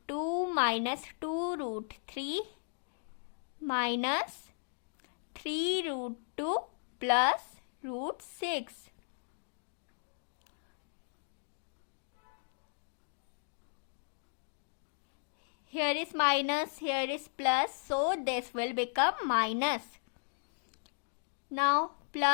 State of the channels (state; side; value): silent; right; digital silence